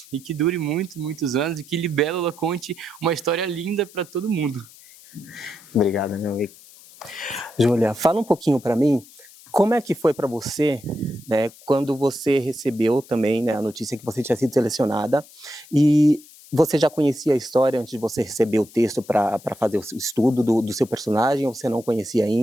e que dure muitos anos, e que Libélula conte uma história linda para todo mundo. Obrigado, meu amigo. Júlia, fala um pouquinho para mim, como é que foi para você, né, quando você recebeu também, né, a notícia que você tinha sido selecionada, e você já conhecia a história antes de você receber o texto para fazer o estudo do seu personagem, ou você não conhecia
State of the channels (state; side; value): noise; left; hiss, 22 dB below the sound